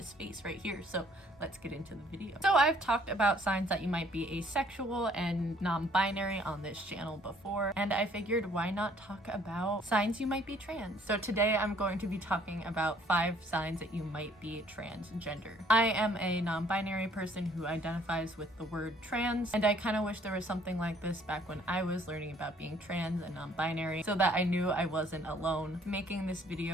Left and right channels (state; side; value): normal; both; correlation 0.61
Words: space right here. So let's get into the video. So I've talked about signs that you might be asexual and non-binary on this channel before, and I figured why not talk about signs you might be trans. So today I'm going to be talking about 5 signs that you might be transgender. I am a non-binary person who identifies with the word trans, and I kind of wish there was something like this back when I was learning about being trans and non-binary so that I knew I wasn't alone. Making this